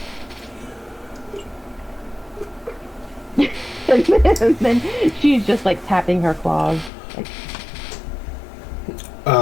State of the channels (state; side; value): drops out; right; at 6.9 s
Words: And then she's just like tapping her claws. Like,